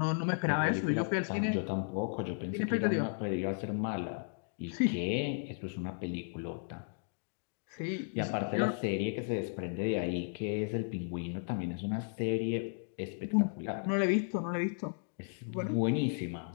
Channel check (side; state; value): right; silent; digital silence